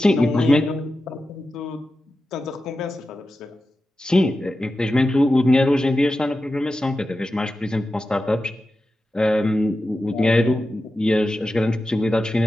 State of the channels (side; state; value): both; normal; correlation 0.92